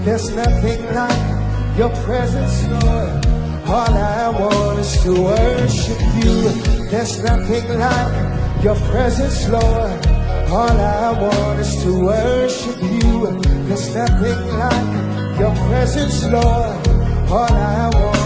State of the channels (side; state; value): both; identical; correlation 1.00